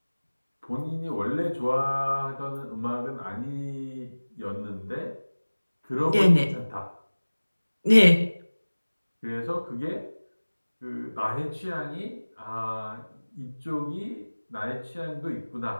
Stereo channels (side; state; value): both; inverted; correlation -1.00